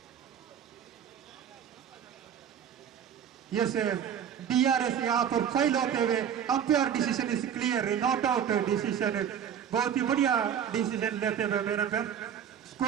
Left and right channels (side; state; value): left; quieter; 8.7 dB